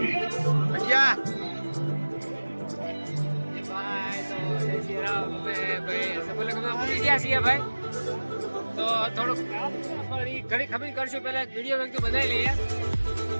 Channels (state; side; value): inverted; both; correlation -1.00